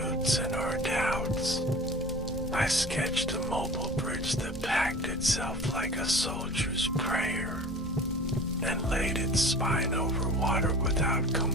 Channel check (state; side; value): normal; both; correlation 0.40